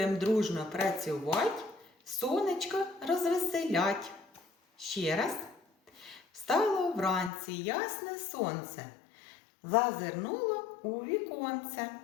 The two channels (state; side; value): drops out; right; at 7.3 s